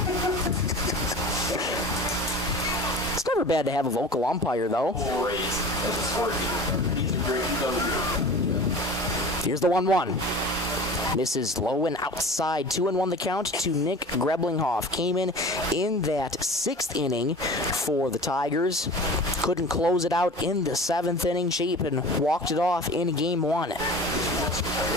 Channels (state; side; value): normal; both; correlation 0.38